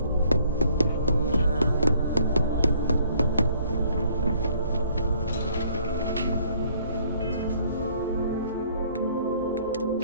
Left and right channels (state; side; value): inverted; both; correlation -0.62